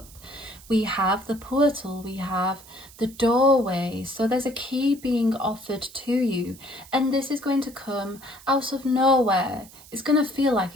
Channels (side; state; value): right; noise; hiss, 21 dB below the sound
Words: We have the portal, we have the doorway. So there's a key being offered to you. And this is going to come out of nowhere. It's going to feel like